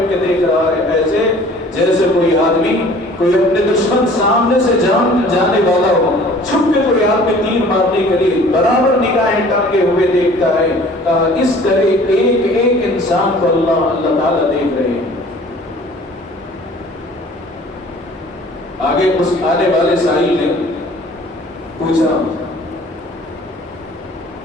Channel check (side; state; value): both; normal; correlation 0.50